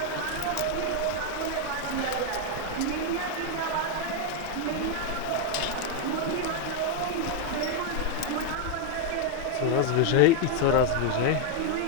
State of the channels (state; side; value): different; both; correlation 0.01